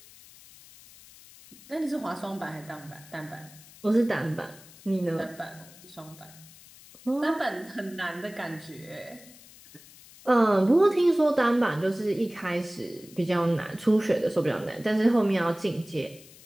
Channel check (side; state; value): left; noise; hiss, 22 dB below the sound